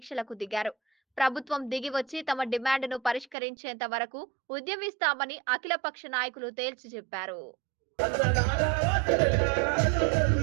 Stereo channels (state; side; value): drops out; left; at 3.4 s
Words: దిగారు. ప్రభుత్వం దిగి వచ్చి తమ డిమాండ్ను పరిష్కరించేంత వరకు ఉద్యమిస్తామని అఖిలపక్ష నాయకులు తేల్చి చెప్పారు.